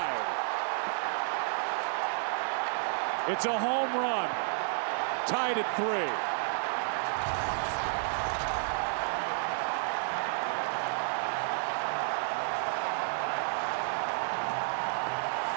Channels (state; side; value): silent; left; digital silence